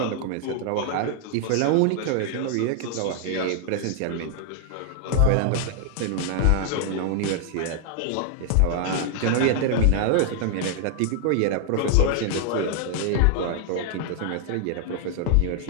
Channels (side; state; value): both; different; correlation 0.00